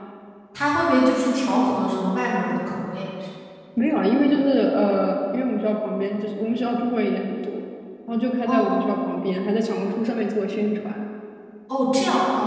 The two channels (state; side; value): identical; both; correlation 1.00